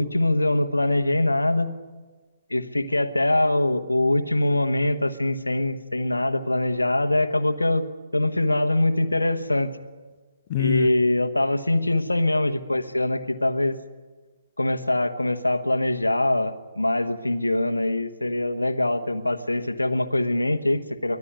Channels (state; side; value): inverted; both; correlation -0.95